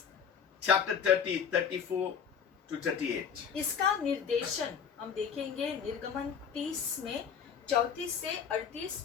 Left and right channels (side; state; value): right; quieter; 7.2 dB